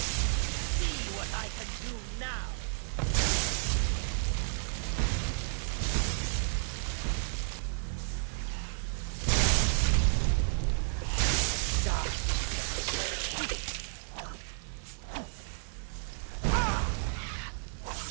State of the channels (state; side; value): silent; left; 56 dB below the other